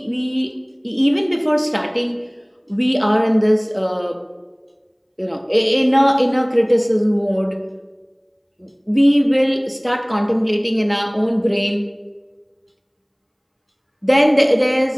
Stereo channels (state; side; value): identical; both; correlation 1.00